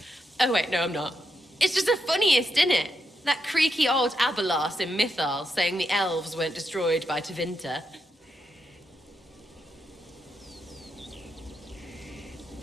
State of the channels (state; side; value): normal; both; correlation 0.83